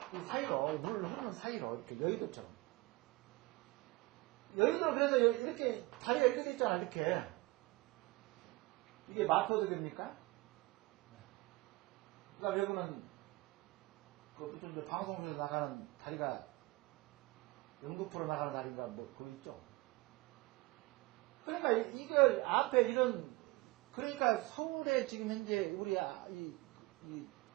이 사이로 물을 흐르는 사이로 이렇게 여의도처럼. 여의도 그래서 이렇게 다리가 이렇게 돼 있잖아. 이렇게 이게 마포대교입니까? 그러니까 외국은 그 무슨 방송에서 나가는 다리가 연극프로 나가는 다리가 뭐 그거 있죠. 그러니까 이걸 앞에 이런 그러니까 서울에 지금 현재 우리 이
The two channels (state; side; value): quieter; left; 21.6 dB